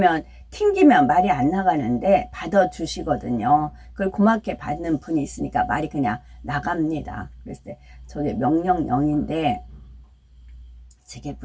튕기면 말이 안 나가는데 받아주시거든요. 그걸 고맙게 받는 분이 있으니까 말이 그냥 나갑니다. 그랬을 때 저게 명령령인데 저게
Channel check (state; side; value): identical; both; correlation 1.00